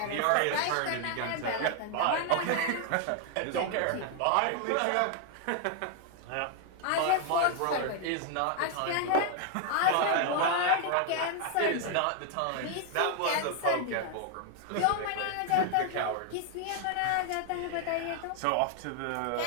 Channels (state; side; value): different; both; correlation 0.00